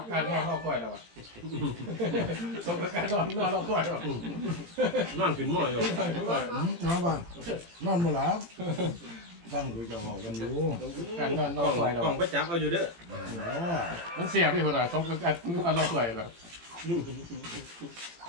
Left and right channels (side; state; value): left; late; 18 ms